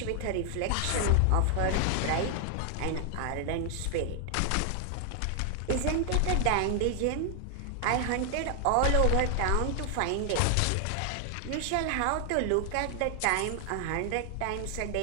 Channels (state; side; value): different; both; correlation 0.00